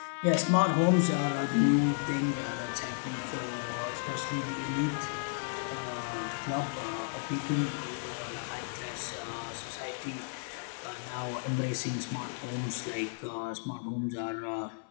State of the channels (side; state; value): right; silent; 56 dB below the other